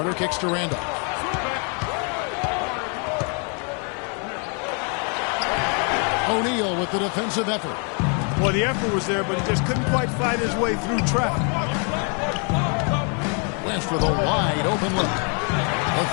kicks to Randolph. O'Neal with the defensive effort. Well, the effort was there, but he just couldn't quite fight his way through traffic. West with a wide open look. A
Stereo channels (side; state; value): right; quieter; 38.3 dB